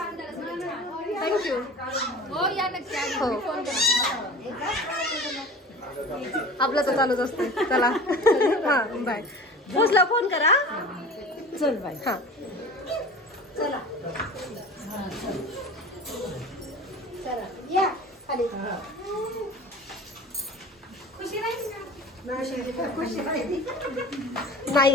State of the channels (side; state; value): both; normal; correlation 0.39